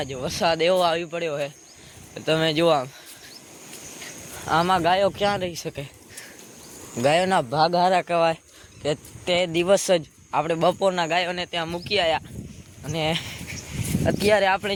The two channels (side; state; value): both; identical; correlation 1.00